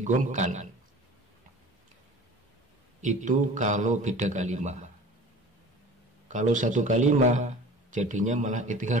itu kalau beda kalimah. Kalau satu kalimah jadinya malah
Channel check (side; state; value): both; normal; correlation 0.42